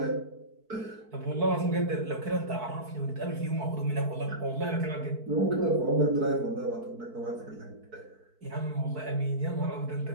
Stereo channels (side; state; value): left; late; 4.6 ms